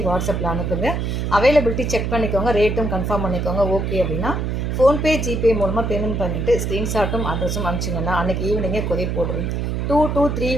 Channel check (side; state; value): right; noise; hum, 1 dB below the sound